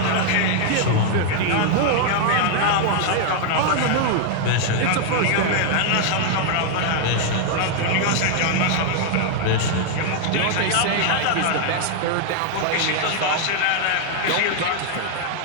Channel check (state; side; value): different; both; correlation 0.00